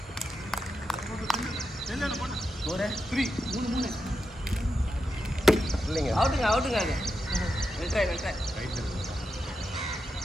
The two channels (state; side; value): normal; both; correlation 0.87